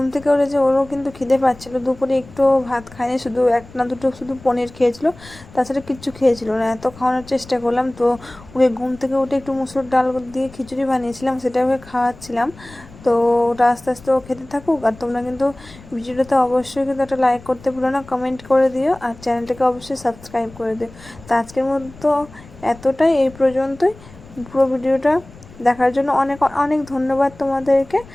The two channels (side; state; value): left; noise; rumble, 21 dB below the sound